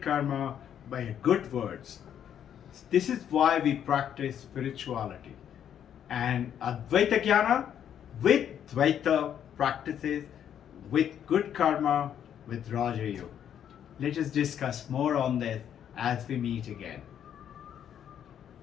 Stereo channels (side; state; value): right; quieter; 9.4 dB